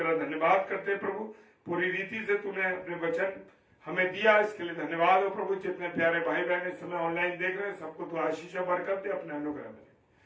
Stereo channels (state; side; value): identical; both; correlation 1.00